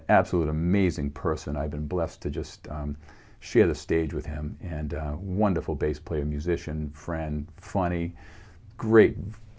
absolute amazing person. I've been blessed to just share the stage with him, and wonderful bass player, musician, friend, funny, great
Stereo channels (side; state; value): both; identical; correlation 1.00